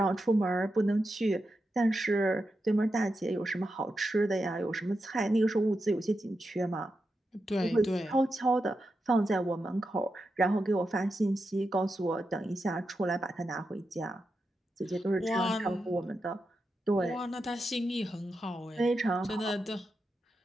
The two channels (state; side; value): normal; both; correlation 0.88